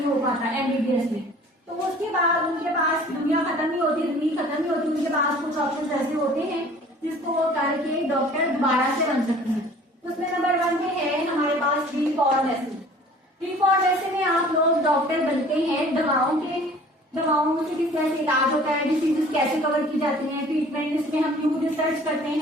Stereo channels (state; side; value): normal; both; correlation 0.49